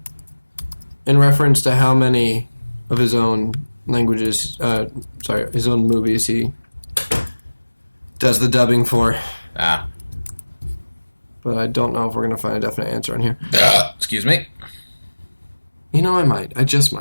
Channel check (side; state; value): both; inverted; correlation -1.00